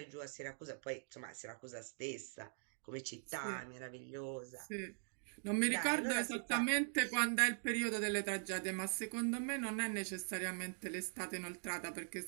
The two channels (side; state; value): left; silent; digital silence